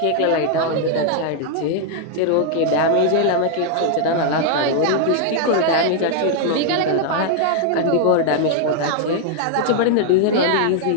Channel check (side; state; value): both; different; correlation 0.00